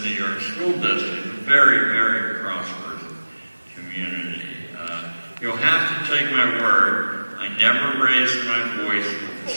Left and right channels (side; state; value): both; inverted; correlation -1.00